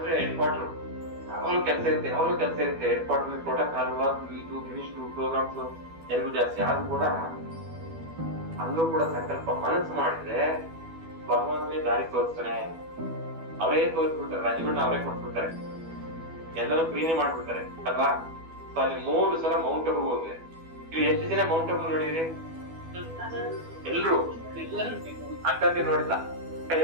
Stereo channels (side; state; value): left; late; 12 ms